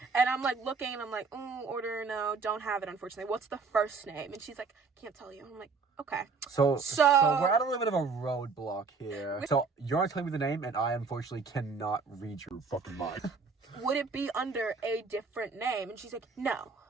And I'm like looking and I'm like, order, no, don't have it, unfortunately. What's the first name? And she's like, can't tell you. And I'm like, okay. So So- we're at a little bit of a roadblock here. So you're not telling me the name, and I unfortunately cannot read your fucking mind. Would it be under a different name? And she's like, no.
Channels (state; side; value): quieter; left; 4.8 dB